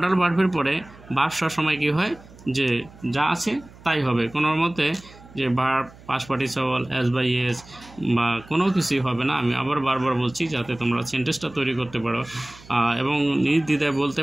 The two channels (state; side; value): noise; right; hum, 22 dB below the sound